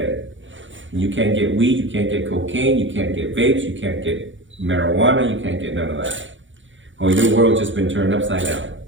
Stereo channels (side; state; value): left; late; 0.55 ms